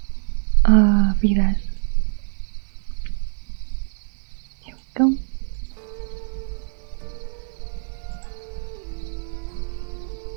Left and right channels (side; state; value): left; silent; 62 dB below the other